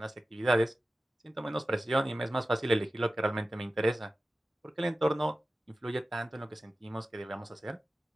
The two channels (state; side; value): normal; both; correlation 0.95